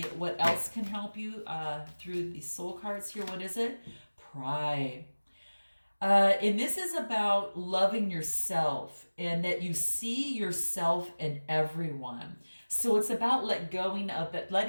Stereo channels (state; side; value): inverted; both; correlation -1.00